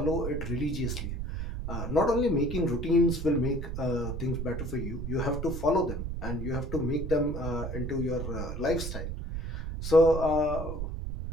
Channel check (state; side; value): noise; right; rumble, 5 dB below the sound